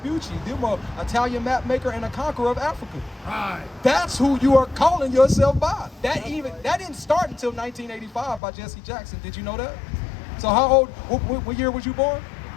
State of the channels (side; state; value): right; drops out; at 8.4 s